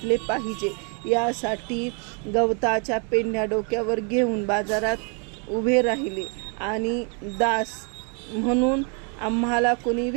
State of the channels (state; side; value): quieter; left; 37.4 dB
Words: पाहिजे. यासाठी गवताच्या पेंढ्या डोक्यावर घेऊन बाजारात उभे राहिले आणि दास म्हणून आम्हाला कोणी